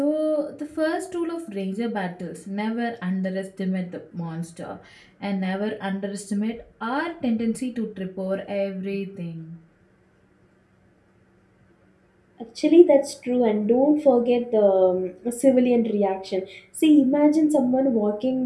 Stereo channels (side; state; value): both; identical; correlation 1.00